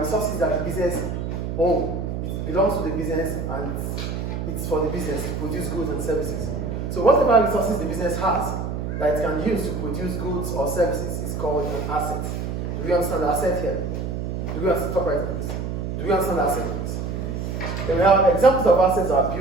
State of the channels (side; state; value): right; noise; hum, 4 dB below the sound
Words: that the business owns. It belongs to the business and it's for the business to produce goods and services. So whatever resources the business has that it can use to produce goods or services is called an asset. Do we understand the asset here? Do we understand Do we understand the asset? Then we have examples of assets are